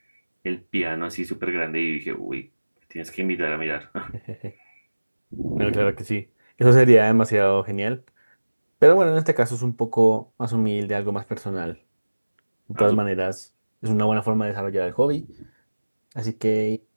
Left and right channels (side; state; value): both; inverted; correlation -1.00